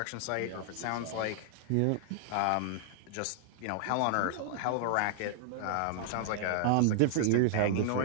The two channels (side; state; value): both; different; correlation -0.01